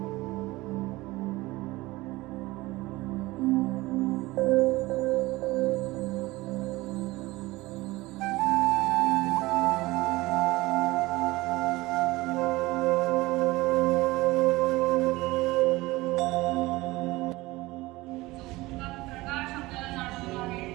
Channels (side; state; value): left; quieter; 20.2 dB